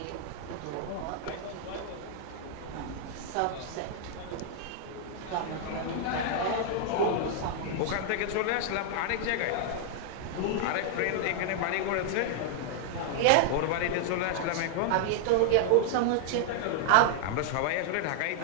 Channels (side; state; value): both; different; correlation 0.00